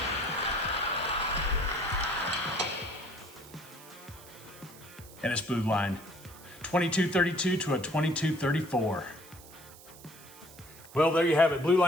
And it's Blueline. 22-32 to a 22-34. Well, there you have it.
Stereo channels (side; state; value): right; noise; hiss, 20 dB below the sound